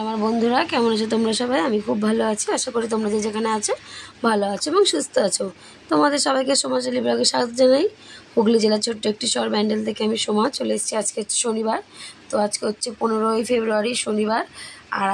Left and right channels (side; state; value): both; identical; correlation 1.00